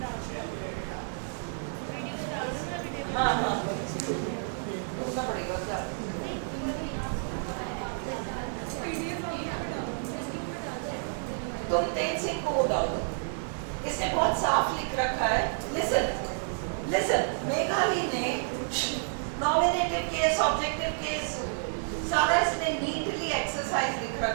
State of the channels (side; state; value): left; silent; 58 dB below the other